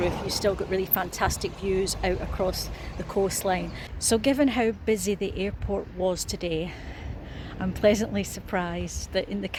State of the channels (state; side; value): identical; both; correlation 1.00